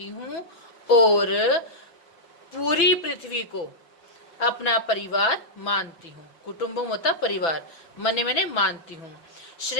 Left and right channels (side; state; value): right; late; 6.0 ms